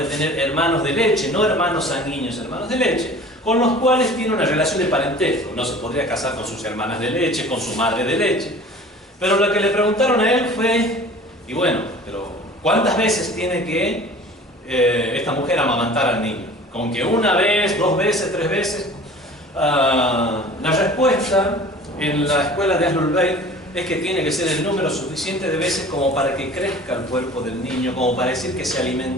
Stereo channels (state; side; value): normal; both; correlation 0.44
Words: tener hermanos de leche, no hermanos sanguíneos, hermanos de leche, con los cuales tiene una relación de parentesco. No se podría casar con sus hermanas de leche, con su madre de leche. Pero lo que le preguntaron a él fue, y bueno, pero ¿cuántas veces tiene que esta mujer amamantar al niño? ¿Con que una vez, 2 veces, 3 veces? La respuesta en la escuela de Ahlul Bayt es que tiene que ser el número suficiente de veces como para que crezca el cuerpo del niño, como para decir que se